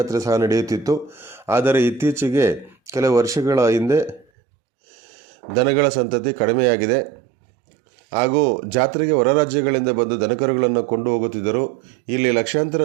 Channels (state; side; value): drops out; left; at 4.2 s